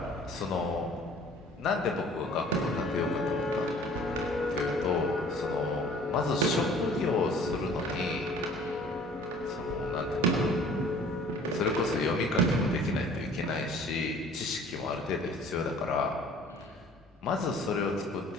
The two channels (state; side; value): normal; both; correlation 0.50